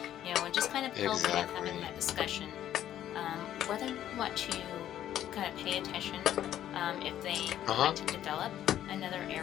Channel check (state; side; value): quieter; right; 11.6 dB